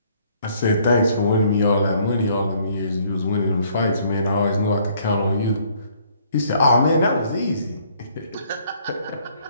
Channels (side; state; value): both; inverted; correlation -0.63